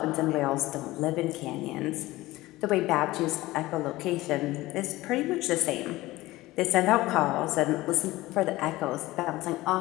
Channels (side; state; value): right; quieter; 18.4 dB